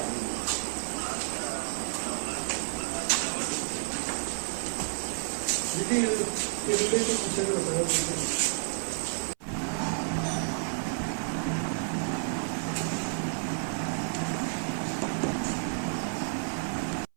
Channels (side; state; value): left; silent; 57 dB below the other